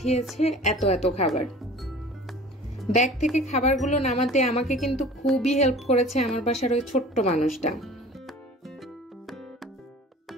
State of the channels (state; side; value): normal; both; correlation 0.43